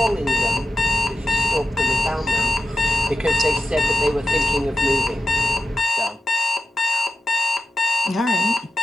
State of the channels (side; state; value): both; normal; correlation 0.88